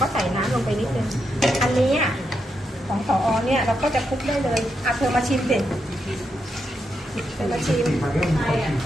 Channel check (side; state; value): both; normal; correlation 0.83